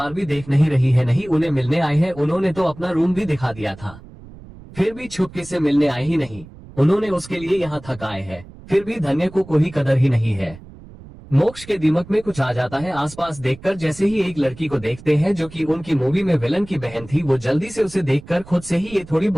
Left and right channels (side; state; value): right; noise; rumble, 19 dB below the sound